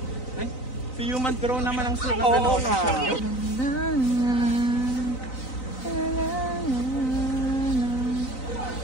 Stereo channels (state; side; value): late; right; 3.9 ms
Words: si Human Drone naman ang sulat. Oo nga.